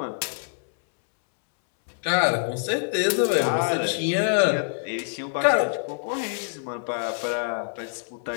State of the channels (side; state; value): right; silent; 61 dB below the other